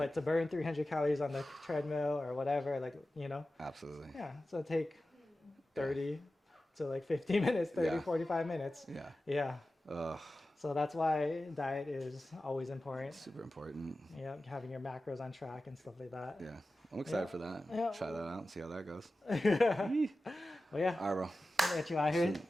to burn 300 calories on the treadmill or whatever, like, Absolutely. yeah. So take 30 to like 50 minutes, 30, Yeah. 45 minutes. Yeah. Yeah. Ugh. So that's why diet is always important. Super important. Yeah, having your macros on track and stuff like that. Yeah. I'm excited Yeah. for that. Yeah. Try that out and see how that goes. Well, yeah. All right, bro. I'll get you out here.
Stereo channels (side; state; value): both; normal; correlation 0.94